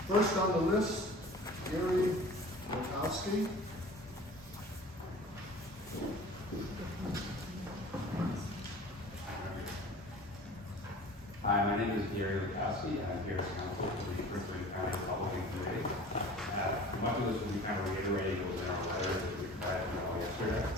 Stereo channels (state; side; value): normal; both; correlation 0.42